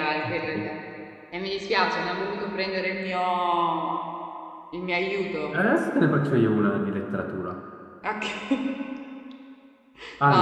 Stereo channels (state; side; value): identical; both; correlation 1.00